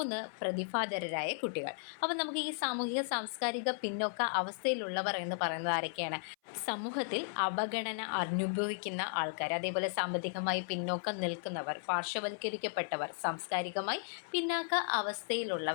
പ്രതിഭാധരരായ കുട്ടികൾ. അപ്പം നമുക്ക് ഈ സാമൂഹിക സാംസ്കാരിക പിന്നോക്ക അവസ്ഥയിലുള്ളവർ എന്ന് പറയുന്നത് ആരൊക്കെയാണ്? സമൂഹത്തിൽ അവഗണന അനുഭവിക്കുന്ന ആൾക്കാർ, അതേപോലെ സാമ്പത്തികമായി പിന്നോക്കം നിൽക്കുന്നവർ, പാർശ്വവൽക്കരിക്കപ്പെട്ടവർ, സാംസ്കാരികമായി പിന്നാക്ക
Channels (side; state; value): right; silent; 54 dB below the other